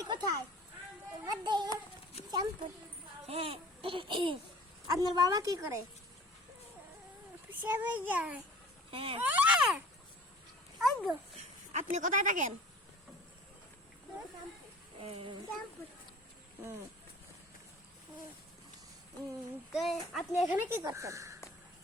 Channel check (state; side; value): normal; both; correlation 0.46